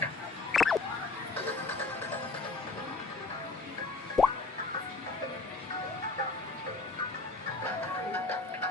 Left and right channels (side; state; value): right; quieter; 3.6 dB